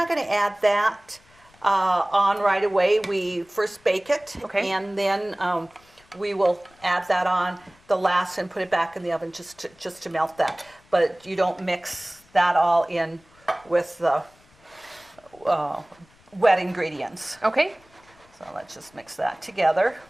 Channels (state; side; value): noise; left; rumble, 30 dB below the sound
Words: going to add that on right away. We first bake it, and then we will add that on the last and put it back in the oven just to melt that. But you don't mix that all in with the wet ingredients. Okay. So let's just mix that together.